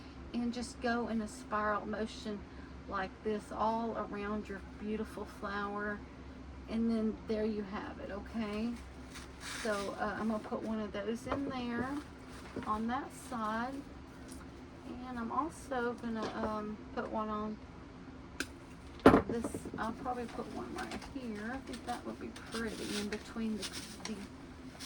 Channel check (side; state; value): both; identical; correlation 1.00